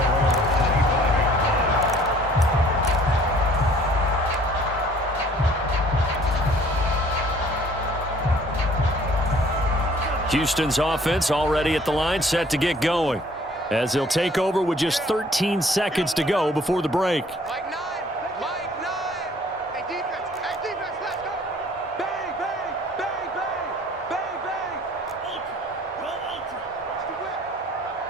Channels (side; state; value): both; normal; correlation 0.56